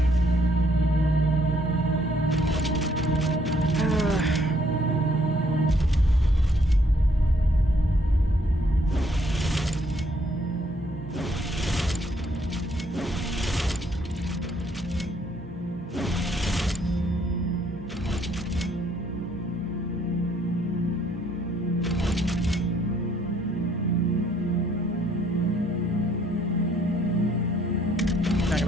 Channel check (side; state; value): both; normal; correlation 0.67